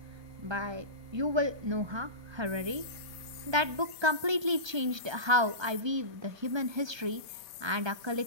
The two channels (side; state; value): left; late; 1.3 ms